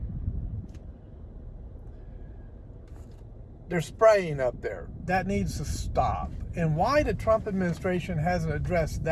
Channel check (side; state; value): both; identical; correlation 1.00